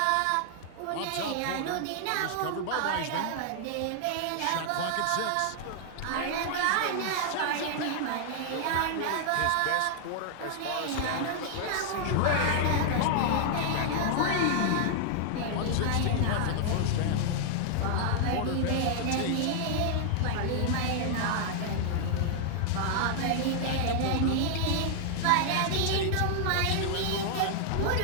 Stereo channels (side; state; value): both; different; correlation -0.01